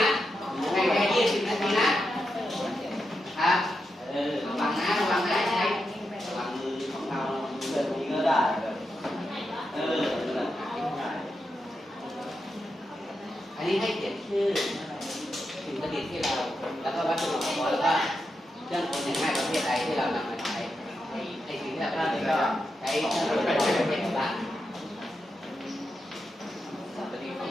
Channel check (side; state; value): both; normal; correlation 0.87